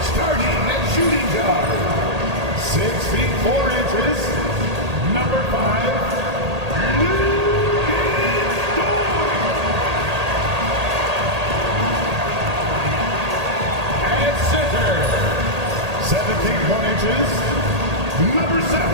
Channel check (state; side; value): late; left; 1.8 ms